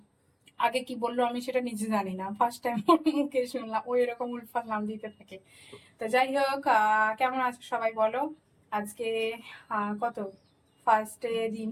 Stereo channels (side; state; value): both; identical; correlation 1.00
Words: আগে কি বললো আমি সেটা নিজে জানি না, ফার্স্ট টাইম ওর মুখে শুনলাম ওই এরকম উলফাল নাম দিতে থাকে। তো যাই হোক, কেমন আছো সবাই বলো? আজকে কত ফার্স্টে দিন,